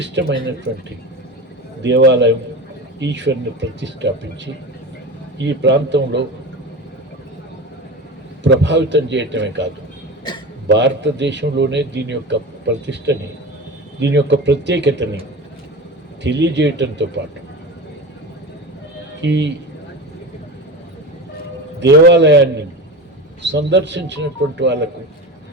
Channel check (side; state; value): both; normal; correlation 0.28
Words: దేవాలయం ఈశ్వరుని ప్రతిష్టాపించి ఈ ప్రాంతంలో ప్రభావితం చేయటమే కాదు, భారతదేశంలోనే దీని యొక్క ప్రతిష్టని, దీని యొక్క ప్రత్యేకతని తెలియజేయటంతో పాటు ఈ దేవాలయాన్ని సందర్శించినటువంటి వాళ్ళకు